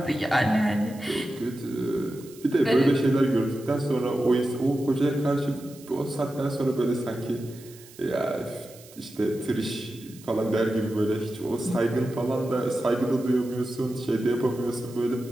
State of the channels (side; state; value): right; noise; hiss, 21 dB below the sound